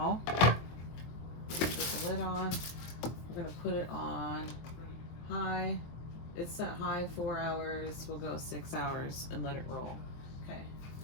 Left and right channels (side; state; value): right; late; 24 ms